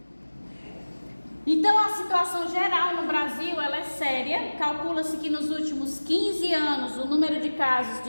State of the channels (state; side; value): inverted; both; correlation -1.00